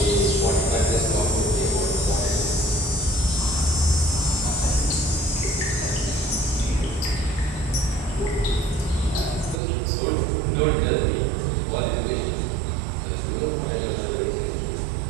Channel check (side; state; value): left; drops out; at 9.6 s